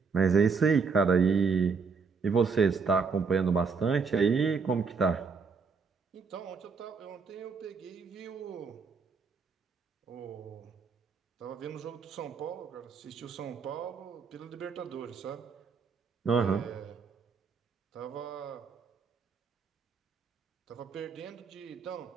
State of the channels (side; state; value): left; quieter; 5.2 dB